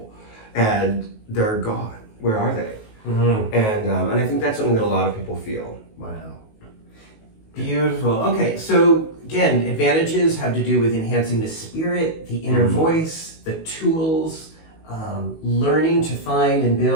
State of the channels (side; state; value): right; late; 19 ms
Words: and they're gone. Where are they? Mm-hmm. And I think that's something that a lot of people feel. Wow. Beautiful. Okay, so again, advantages have to do with enhancing the spirit, the inner voice, the tools, learning to find and